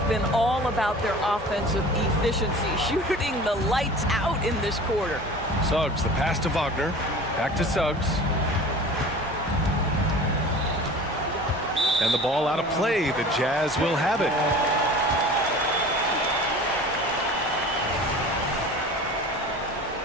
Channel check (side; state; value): both; normal; correlation 0.40